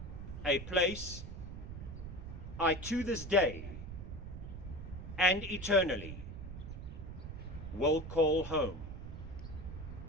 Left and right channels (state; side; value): noise; right; rumble, 9 dB below the sound